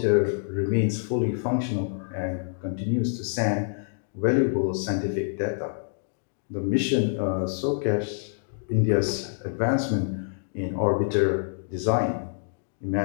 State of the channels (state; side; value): silent; right; digital silence